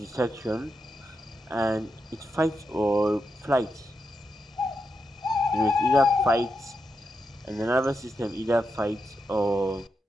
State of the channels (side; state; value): both; normal; correlation 0.86